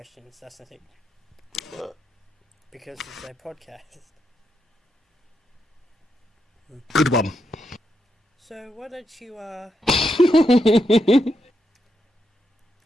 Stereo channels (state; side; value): normal; both; correlation 0.82